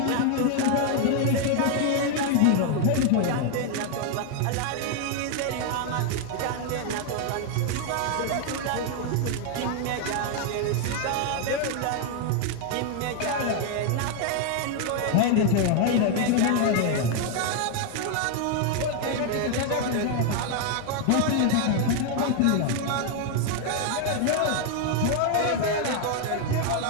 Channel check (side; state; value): both; different; correlation 0.01